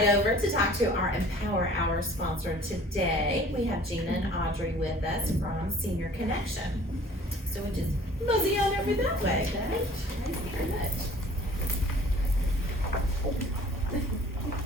over to talk to our Empower Hour sponsor today. We have Gina and Audrey with us from Senior Connection. So we'll just mosey on over that way. Thank you very much.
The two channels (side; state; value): both; normal; correlation 0.50